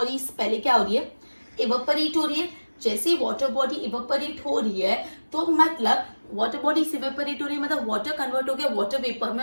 पहले क्या हो रही है, इवेपोरेट हो रही है. जैसे वाटर बॉडी इवेपोरेट हो रही है तो मतलब वाटर बॉडी इवेपोरेट हो रही है मतलब वाटर कन्वर्ट हो गया वाटर वेपर में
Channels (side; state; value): both; inverted; correlation -1.00